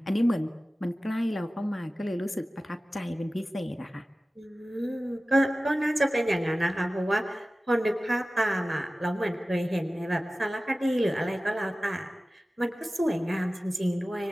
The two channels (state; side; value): normal; both; correlation 0.96